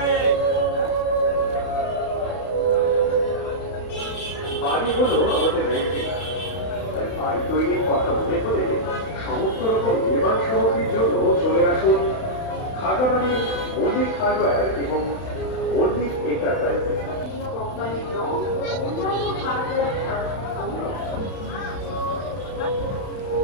বাড়ি হলো আমাদের রেন্টিনা, তাই বাড়ি তৈরির কথা মনে করে সমস্ত রকম নির্মাণ সামগ্রীর জন্য চলে আসুন খাগড়াবাড়ির মল্লিক হার্ডওয়্যার এবং মল্লিক এন্টারপ্রাইজে।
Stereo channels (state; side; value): late; right; 32 ms